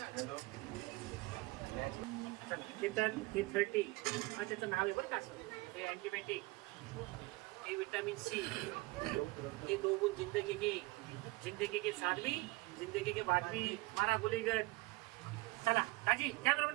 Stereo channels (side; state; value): left; quieter; 22.3 dB